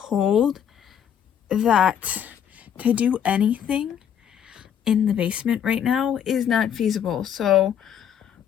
that to do anything in the basement right now is not feasible. So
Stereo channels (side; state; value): right; quieter; 8.9 dB